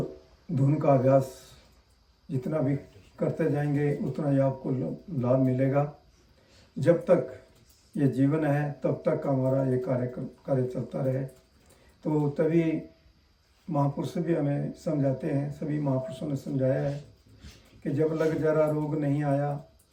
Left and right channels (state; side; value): identical; both; correlation 1.00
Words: धुन का अभ्यास जितना भी करते जाएंगे उतना ही आपको लाभ मिलेगा। जब तक ये जीवन है तब तक हमारा ये कार्य चलता रहे। तो तभी महापुरुष भी हमें समझाते हैं, सभी महापुरुषों ने समझाया है कि जब लग जरा रोग नहीं आया,